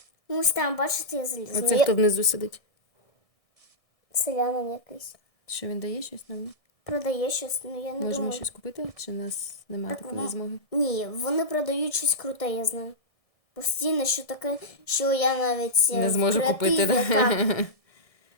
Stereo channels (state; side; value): late; right; 1.6 ms